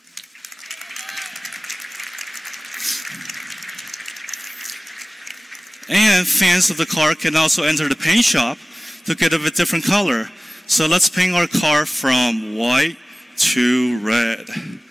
And fans of the car can also enter the paint shop to get a different color. So let's paint our car from white to red.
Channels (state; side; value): normal; both; correlation 0.97